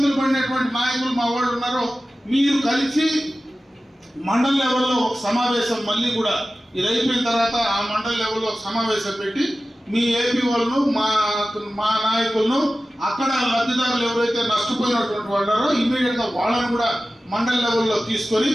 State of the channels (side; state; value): both; normal; correlation 0.95